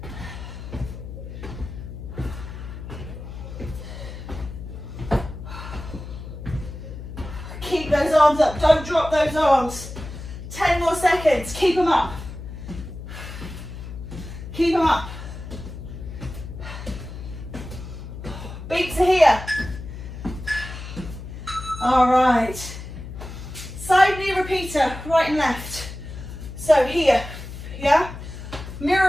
Keep those arms up. Don't drop those arms. 10 more seconds. Keep them up. Keep them up. Beats are here. All right. Side knee repeater, right and left. So here, yeah?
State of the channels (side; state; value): left; noise; hum, 10 dB below the sound